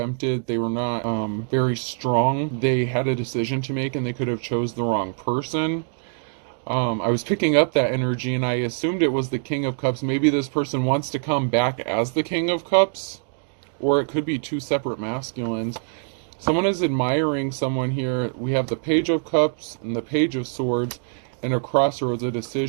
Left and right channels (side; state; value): left; silent; 63 dB below the other